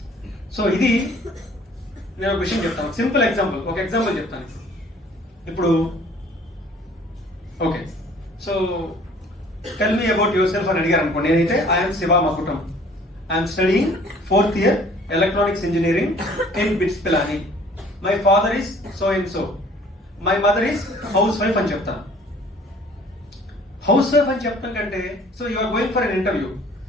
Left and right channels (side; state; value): both; normal; correlation 0.54